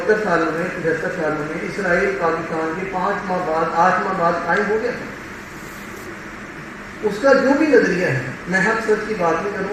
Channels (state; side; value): identical; both; correlation 1.00